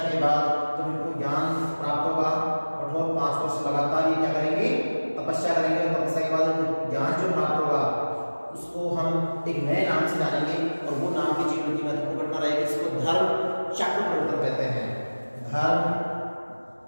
के बाद, तो इनको ज्ञान प्राप्त होगा। कठोर 5 वर्ष लगातार ये क्या करेंगे? तपस्या करेंगे। तपस्या के बाद ज्ञान जो प्राप्त होगा उसको हम एक नए नाम से जानेंगे और वो नाम की जीवन की महत्वपूर्ण घटना रहेगी, इसको धर्म चक्र परिवर्तन कहते हैं। धर्म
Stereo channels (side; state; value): both; inverted; correlation -1.00